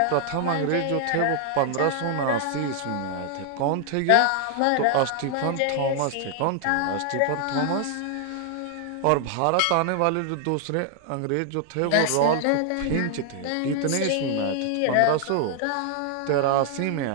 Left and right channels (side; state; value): both; different; correlation 0.00